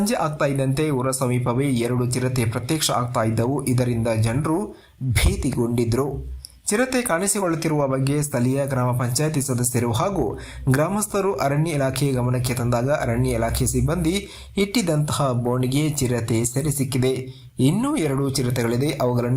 ಆಗ್ತಾ ಇದ್ದಂತೆ ಊರ ಸಮೀಪವೇ 2 ಚಿರತೆ ಪ್ರತ್ಯಕ್ಷ ಆಗ್ತಾ ಇದ್ದವು. ಇದರಿಂದ ಜನರು ಭೀತಿಗೊಂಡಿದ್ರು. ಚಿರತೆ ಕಾಣಿಸಿಕೊಳ್ಳುತ್ತಿರುವ ಬಗ್ಗೆ ಸ್ಥಳೀಯ ಗ್ರಾಮ ಪಂಚಾಯಿತಿ ಸದಸ್ಯರು ಹಾಗೂ ಗ್ರಾಮಸ್ಥರು ಅರಣ್ಯ ಇಲಾಖೆ ಗಮನಕ್ಕೆ ತಂದಾಗ ಅರಣ್ಯ ಇಲಾಖೆ ಸಿಬ್ಬಂದಿ ಇಟ್ಟಿದ್ದಂತಹ ಬೋನಿಗೆ ಚಿರತೆ ಸೆರೆ ಸಿಕ್ಕಿದೆ. ಇನ್ನೂ 2 ಚಿರತೆಗಳಿದೆ.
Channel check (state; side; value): identical; both; correlation 1.00